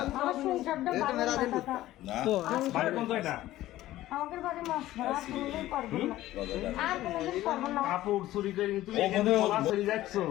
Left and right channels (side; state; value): right; quieter; 15.2 dB